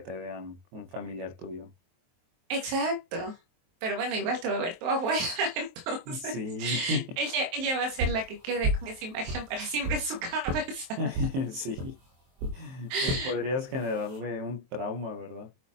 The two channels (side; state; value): left; late; 23 ms